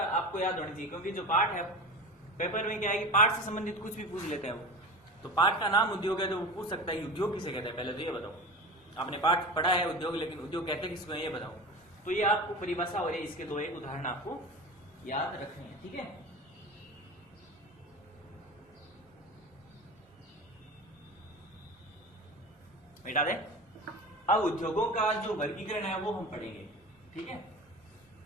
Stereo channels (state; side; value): normal; both; correlation 0.31